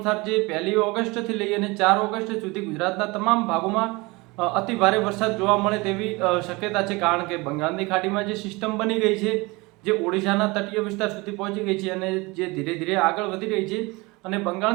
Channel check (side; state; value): left; quieter; 24.4 dB